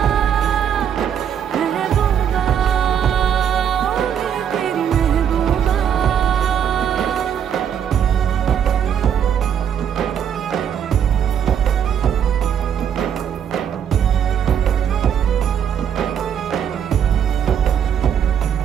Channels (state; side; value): quieter; left; 8.6 dB